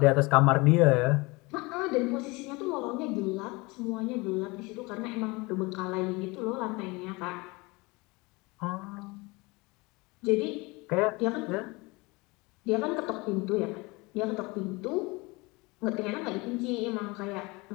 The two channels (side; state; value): right; quieter; 24.9 dB